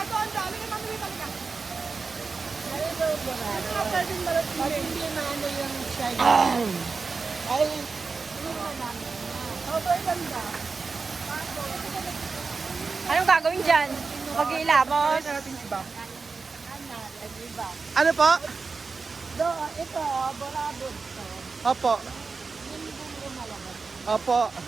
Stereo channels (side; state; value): left; quieter; 4.5 dB